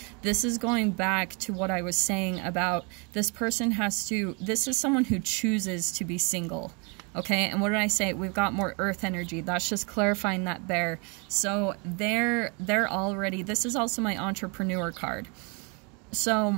This is going back to what I was saying about this person this is someone who chooses to be single. Okay, and what did I say? We've got more earth energy. That's just clarifying that bear. So they're already, this is also my entrepreneur card. So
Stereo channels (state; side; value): quieter; left; 32.9 dB